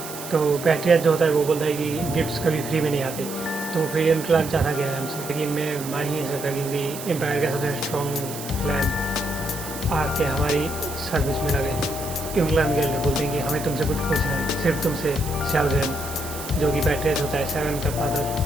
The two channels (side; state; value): right; noise; hiss, 11 dB below the sound